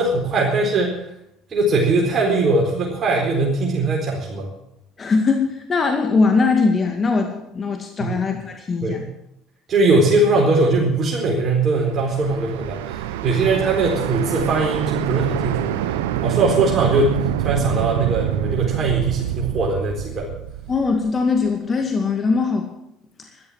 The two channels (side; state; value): both; normal; correlation 0.48